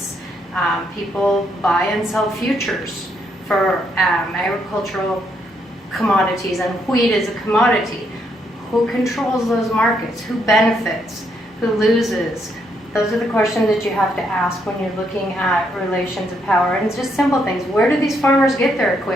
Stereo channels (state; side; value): normal; both; correlation 0.75